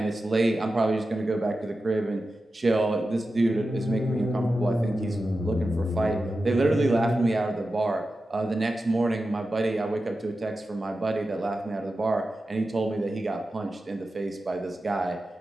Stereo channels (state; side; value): normal; both; correlation 0.92